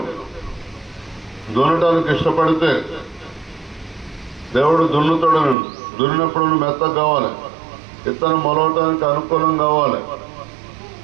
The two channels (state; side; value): drops out; left; at 5.6 s